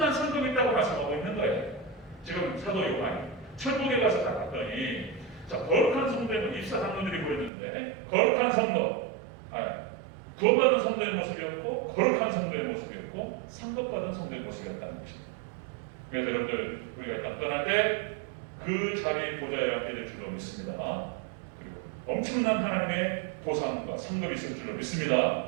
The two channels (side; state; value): left; drops out; at 7.5 s